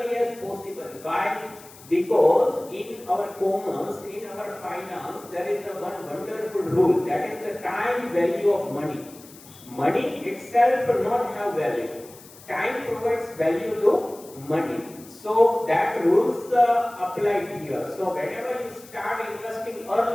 as possible. Why? Because in our commerce, in our finance, there is a one wonderful rule, that is the time value of money. Money itself does not have value. Time provides value to money. So that rules apply here. So whenever you start investing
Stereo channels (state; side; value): noise; left; hiss, 21 dB below the sound